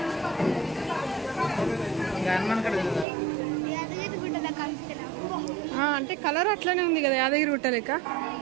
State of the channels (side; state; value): left; drops out; at 3.1 s